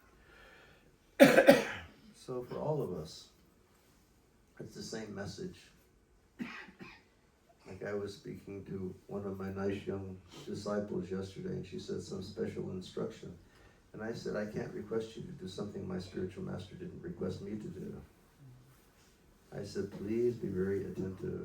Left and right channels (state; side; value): identical; both; correlation 1.00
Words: So for all of us, it's the same message. Like I was speaking to one of my nice young disciples yesterday, and she said some special instruction. And I said, I can't request you to do something my spiritual master didn't request me to do. I said, please be very